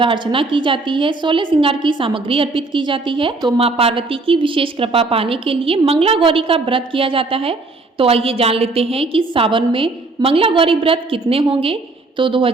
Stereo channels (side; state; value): left; quieter; 3.4 dB